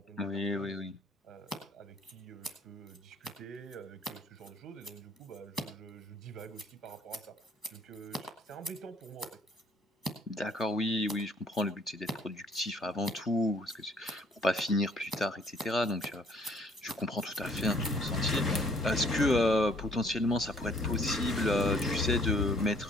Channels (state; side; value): normal; both; correlation 0.61